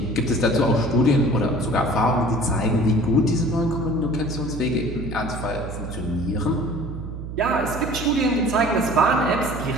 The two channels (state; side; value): noise; right; hum, 8 dB below the sound